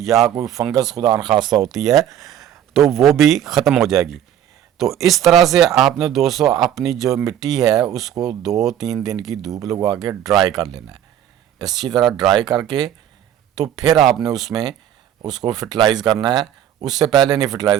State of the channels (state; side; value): quieter; left; 10.5 dB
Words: कोई फंगस खुदा न खास्ता होती है, तो वो भी ख़त्म हो जाएगी। तो इस तरह से आपने दोस्तों अपनी जो मिट्टी है उसको 2-3 दिन की धूप लगवा के ड्राई कर लेना है। अच्छी तरह ड्राई करके तो फिर आपने उसमें उसको फर्टिलाइज़ करना है। उससे पहले नहीं